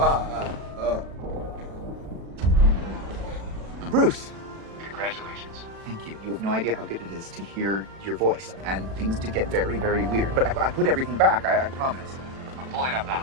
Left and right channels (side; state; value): left; late; 37 ms